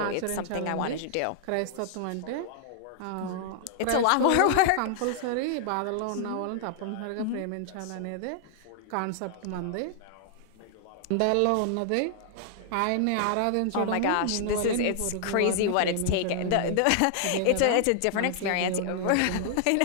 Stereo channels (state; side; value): different; both; correlation 0.00